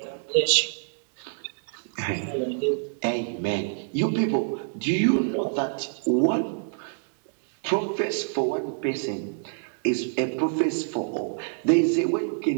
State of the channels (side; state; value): left; silent; digital silence